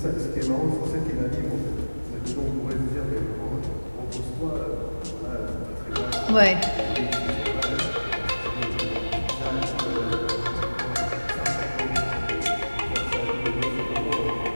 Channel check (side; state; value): both; inverted; correlation -1.00